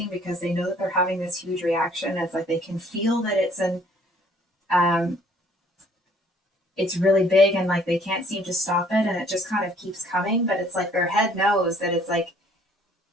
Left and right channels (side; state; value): both; normal; correlation 0.59